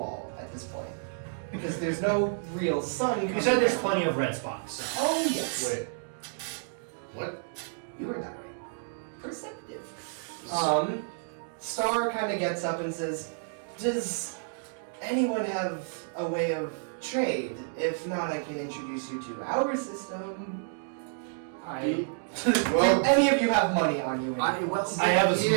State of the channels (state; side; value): silent; left; digital silence